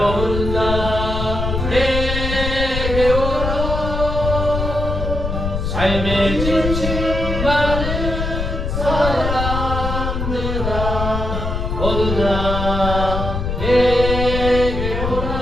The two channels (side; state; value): left; noise; rumble, 3 dB below the sound